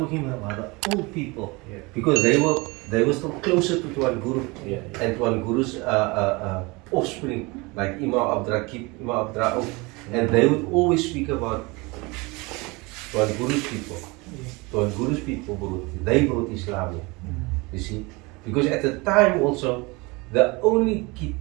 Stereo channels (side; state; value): left; quieter; 25.6 dB